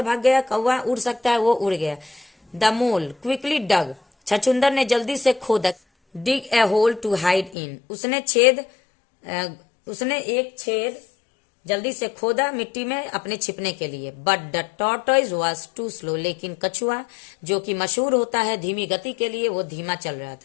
भाग गया, कौवा उड़ सकता है, वो उड़ गया। द मोल क्विकली डग, छछुंदर ने जल्दी से खोदा। डिग ए होल टू हाइड इन, उसने एक छेद जल्दी से खोदा मिट्टी में अपने छिपने के लिए। But the tortoise was too slow, लेकिन कछुआ जो कि मशहूर होता है धीमी गति के लिए, वो धीमा चल रहा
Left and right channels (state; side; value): drops out; right; at 7.6 s